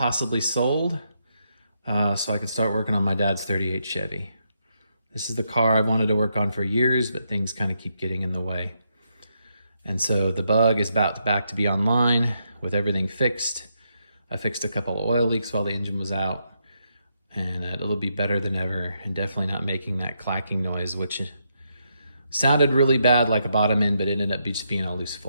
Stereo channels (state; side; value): inverted; both; correlation -0.80